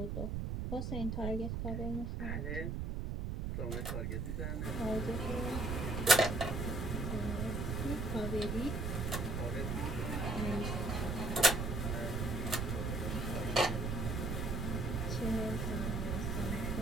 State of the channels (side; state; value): right; noise; rumble, 1 dB below the sound